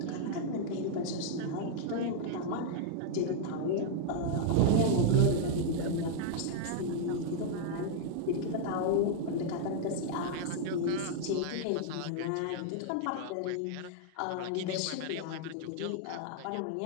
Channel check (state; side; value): different; both; correlation 0.00